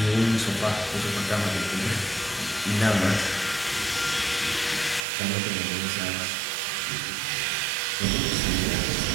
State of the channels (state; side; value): drops out; left; at 5.0 s